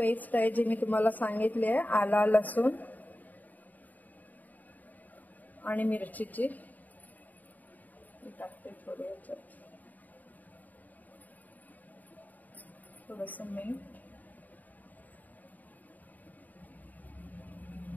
आहे जी मी तुम्हाला सांगितली आहे, आला लसूण आणि मिरचीची. टाकते थोडी याच्यात, थोडंसं मीठ,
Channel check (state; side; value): late; right; 0.081 ms